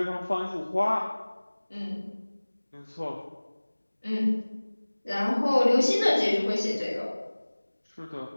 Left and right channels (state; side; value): inverted; both; correlation -1.00